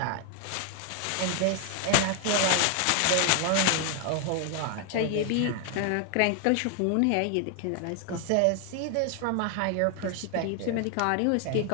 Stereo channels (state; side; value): different; both; correlation 0.01